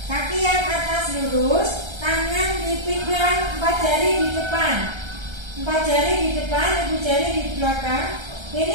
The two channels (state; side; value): late; left; 1.3 ms